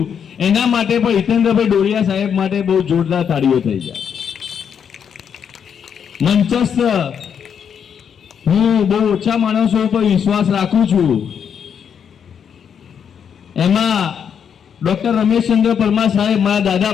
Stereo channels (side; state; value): right; quieter; 7.7 dB